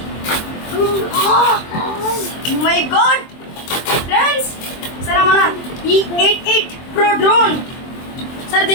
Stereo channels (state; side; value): late; right; 23 ms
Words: మై గాడ్ ఫ్రెండ్స్, సరే మన ఈ 88 Pro డ్రోన్ సరే